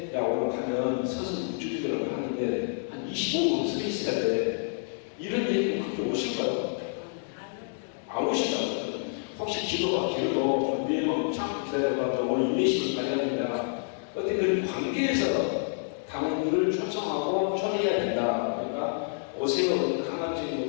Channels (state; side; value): silent; right; digital silence